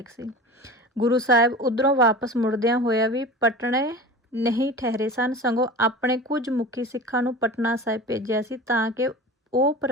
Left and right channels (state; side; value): normal; both; correlation 0.34